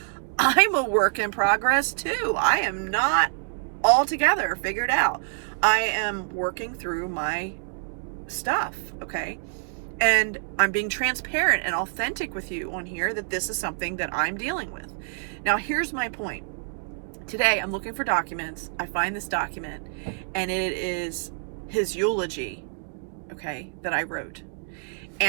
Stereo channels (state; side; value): silent; left; digital silence